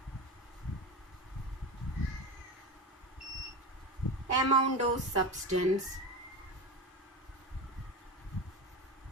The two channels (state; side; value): normal; both; correlation 0.23